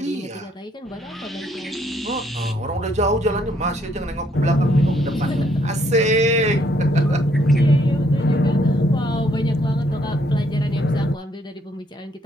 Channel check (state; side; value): normal; both; correlation 0.69